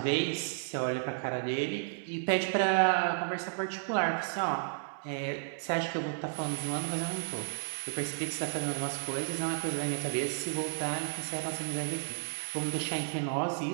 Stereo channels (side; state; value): left; silent; digital silence